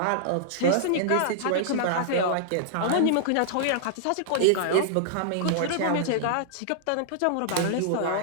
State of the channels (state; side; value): different; both; correlation -0.01